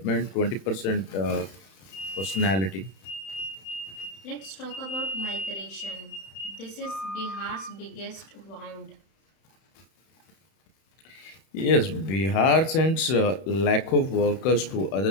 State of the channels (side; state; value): right; late; 31 ms